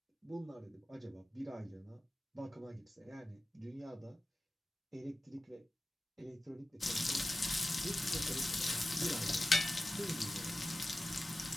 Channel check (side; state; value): both; normal; correlation 0.96